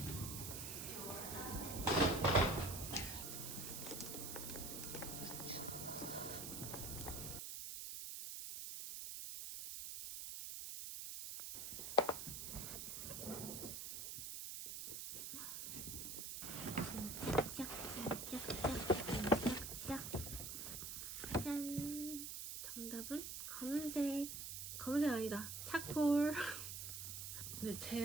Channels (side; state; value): right; noise; hiss, 6 dB below the sound